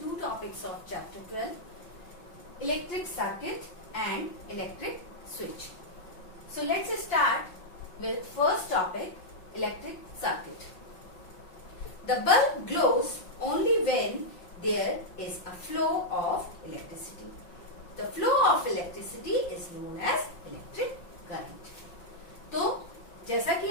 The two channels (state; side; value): late; right; 5.7 ms